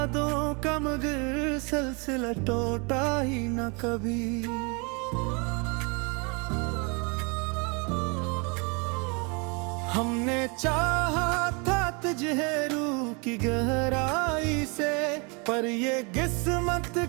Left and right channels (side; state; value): left; quieter; 31.7 dB